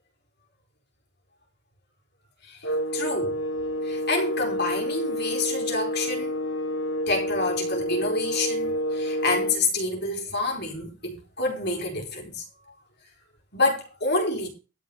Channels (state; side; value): normal; both; correlation -0.12